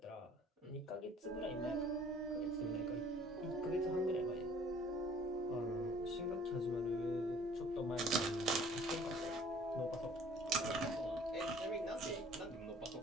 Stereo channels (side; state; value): both; normal; correlation 0.54